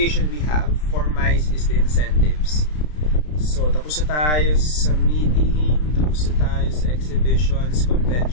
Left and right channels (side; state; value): right; late; 33 ms